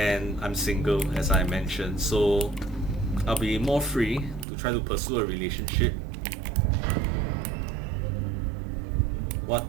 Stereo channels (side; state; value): left; drops out; at 4.5 s